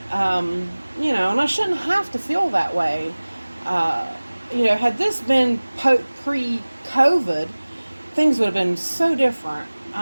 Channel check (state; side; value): inverted; both; correlation -1.00